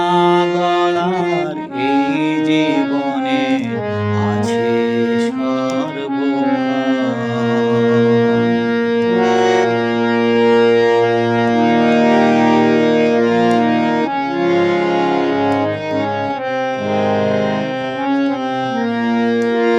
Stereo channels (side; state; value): both; identical; correlation 1.00